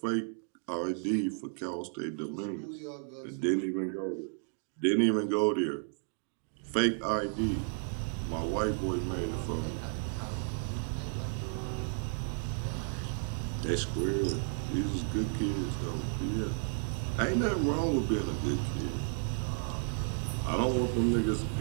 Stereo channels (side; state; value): left; silent; 56 dB below the other